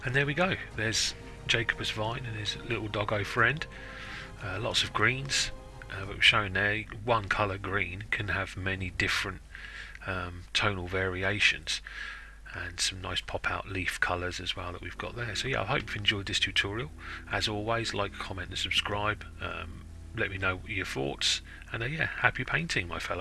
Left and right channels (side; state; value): both; identical; correlation 1.00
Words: And there we go, there's Jacobus Vyne and his little doggo friend. Lots of greens, but we're showing there one colour green can have many different tonal variations, and some nice pop out leaf colours as well that we've got there. So yeah, I hope you've enjoyed this tutorial. As always, like, comment and subscribe. Let me know your thoughts, and yeah, happy painting, my